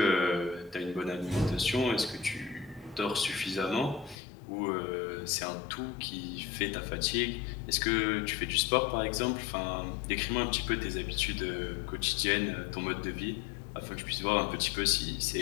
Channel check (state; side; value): drops out; right; at 4.2 s